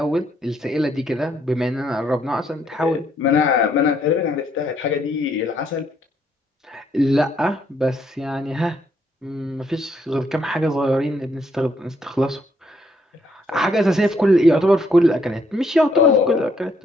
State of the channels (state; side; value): normal; both; correlation 0.71